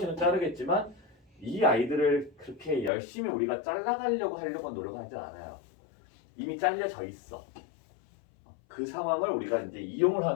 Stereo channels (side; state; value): right; drops out; at 2.9 s